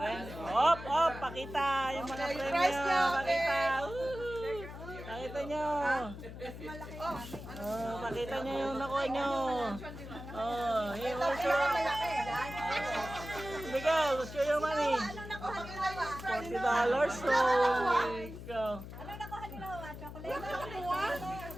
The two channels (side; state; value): left; noise; hum, 11 dB below the sound